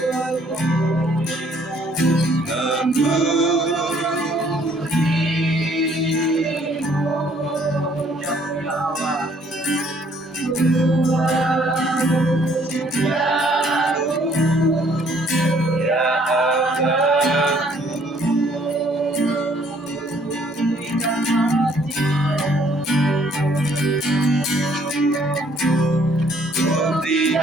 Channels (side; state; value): both; normal; correlation 0.62